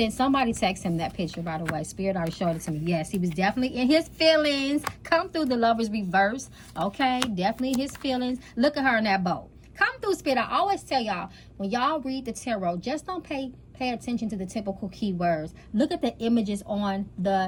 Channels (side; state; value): both; identical; correlation 1.00